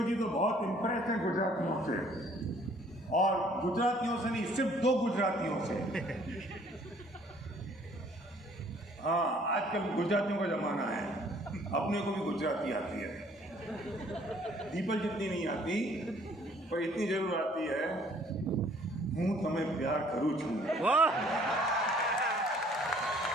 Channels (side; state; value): both; normal; correlation 0.59